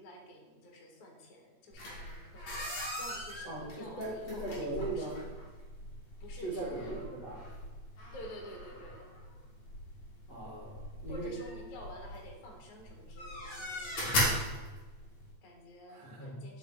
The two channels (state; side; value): late; right; 8.8 ms